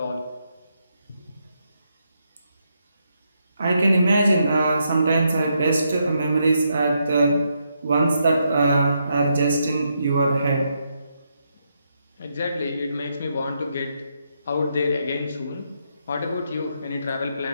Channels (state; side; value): inverted; both; correlation -0.80